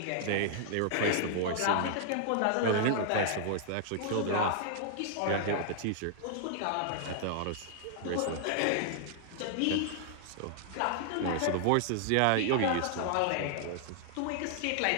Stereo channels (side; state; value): both; different; correlation -0.01